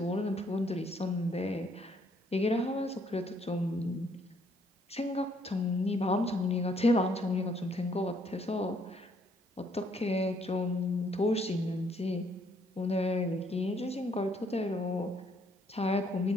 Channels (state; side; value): normal; both; correlation 0.68